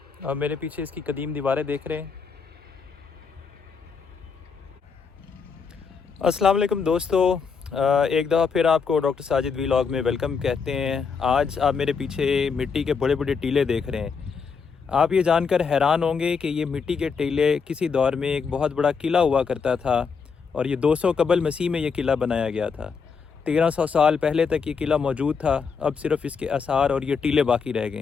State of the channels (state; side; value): quieter; right; 5.6 dB